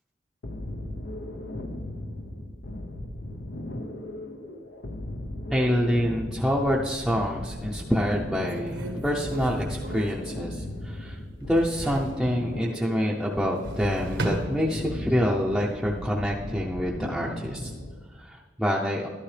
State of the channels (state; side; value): normal; both; correlation 0.82